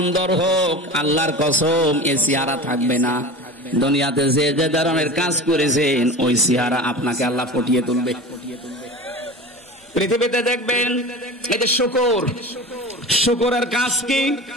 হোক আল্লাহর কসম এ চেহারা থাকবে না। দুনিয়াতে যে যে ধরনের কাজ করেছেন ওই চেহারা আপনাকে আল্লাহ ফুটিয়ে তুলবে। পৃথিবীতে দেখবেন এই যে শুকরের কাজ কি,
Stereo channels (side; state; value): both; normal; correlation 0.32